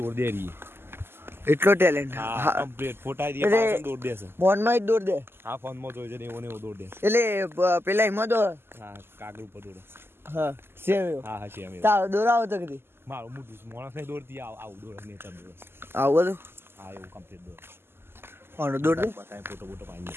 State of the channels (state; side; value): late; left; 0.12 ms